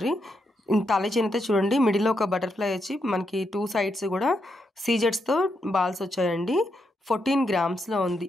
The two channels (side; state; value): both; normal; correlation 0.81